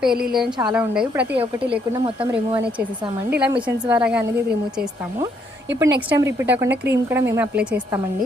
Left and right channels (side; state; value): both; normal; correlation 0.71